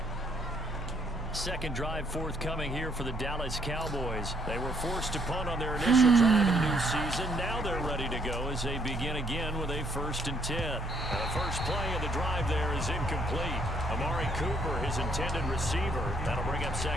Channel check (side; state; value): both; normal; correlation 0.70